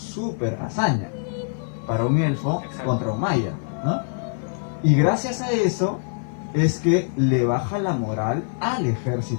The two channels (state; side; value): silent; right; digital silence